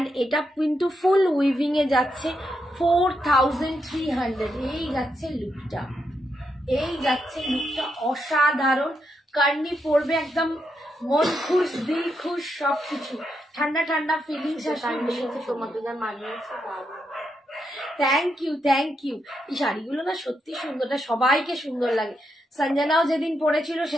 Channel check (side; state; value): both; normal; correlation 0.82